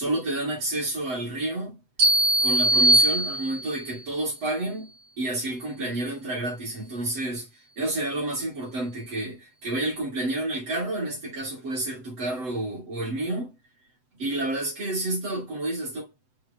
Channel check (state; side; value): late; left; 7.9 ms